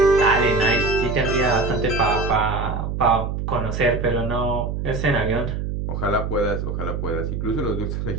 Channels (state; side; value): noise; right; hum, 3 dB below the sound